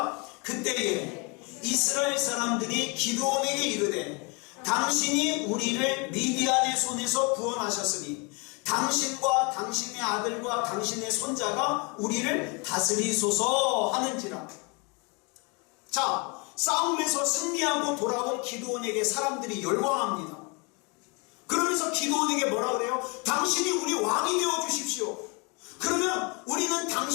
그때에 이스라엘 사람들이 기드온에게 이르되 당신이 우리를 미디안의 손에서 구원하셨으니 당신과 당신의 아들과 당신의 손자가 우리를 다스리소서 하는지라. 자, 싸움에서 승리하고 돌아온 기드온에게 사람들이 열광합니다. 그러면서 기드온에게 뭐라 그래요? 당신이 우리 왕이 되어 주십시오. 그러면 우리는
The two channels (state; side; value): quieter; right; 31.2 dB